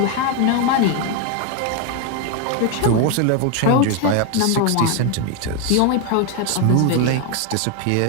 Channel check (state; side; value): different; both; correlation 0.01